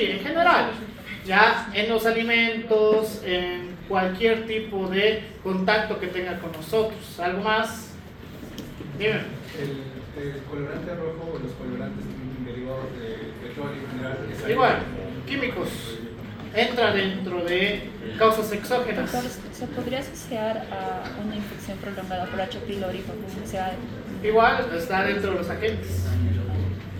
en general, ya en los alimentos, en cualquier tipo de contacto que tenga con nosotros. ¿Algo más? Dime. el colorante rojo o los colorantes derivados de petróleo en general. Igual, químicos. Entra dentro de causas exógenas. Doctor, ¿se podría asociar a una infección prolongada por H. pylori con necesidad de... Igual está dentro de los agentes.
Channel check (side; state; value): both; identical; correlation 1.00